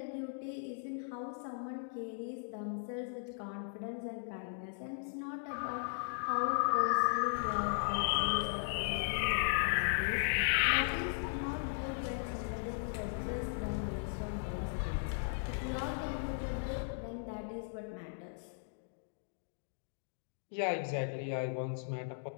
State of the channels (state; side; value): silent; right; digital silence